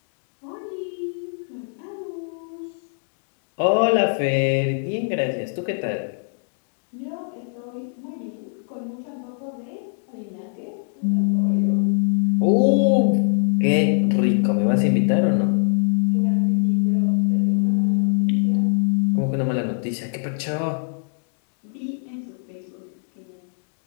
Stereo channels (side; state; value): right; silent; digital silence